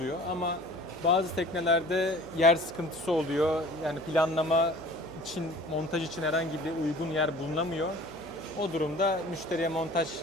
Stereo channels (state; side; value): noise; left; hum, 23 dB below the sound